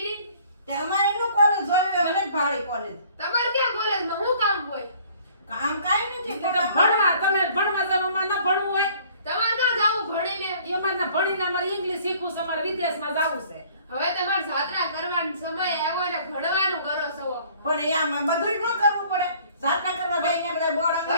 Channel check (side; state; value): both; inverted; correlation -0.56